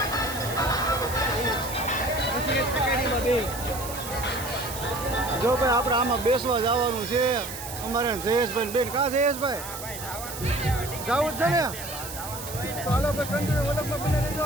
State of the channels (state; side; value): noise; right; hiss, 10 dB below the sound